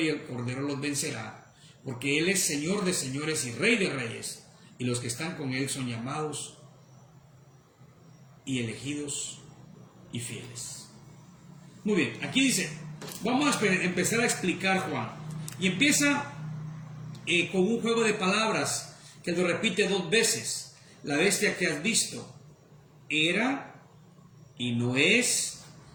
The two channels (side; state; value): both; identical; correlation 1.00